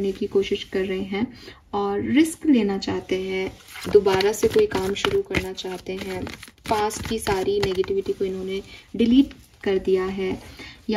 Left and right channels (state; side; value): identical; both; correlation 1.00